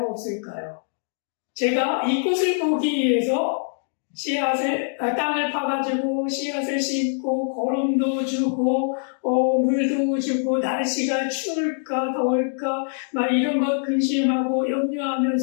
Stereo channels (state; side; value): silent; right; 63 dB below the other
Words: 없을까요? 제가 이 꽃을 보기 위해서 땅을 파가지고 씨앗을 심고 거름도 주고 물도 주고 날씨가 추울까 더울까 막 이런 것 근심하고